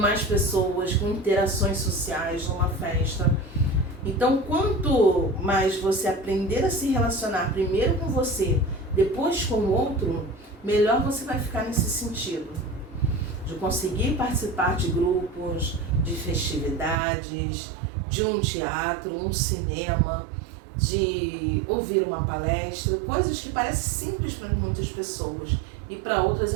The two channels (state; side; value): drops out; left; at 16.9 s